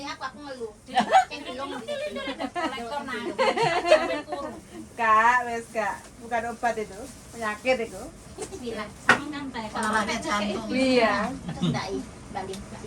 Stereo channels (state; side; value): identical; both; correlation 1.00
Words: aku ngeluh. Sing belum Kolektor nah. Sampai kurung. Kak, wes Kak. Bukan obat itu. Penyakit itu. bilang Sama kan teh Kalau ada jantung. Iya. ndai balik